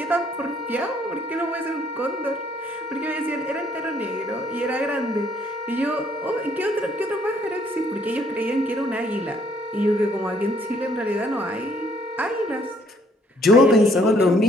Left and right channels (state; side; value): normal; both; correlation 0.65